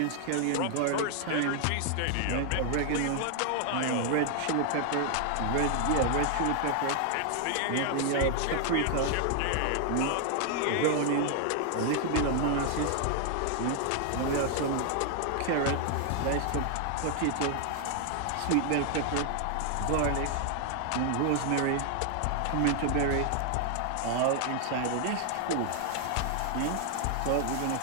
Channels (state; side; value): different; both; correlation 0.00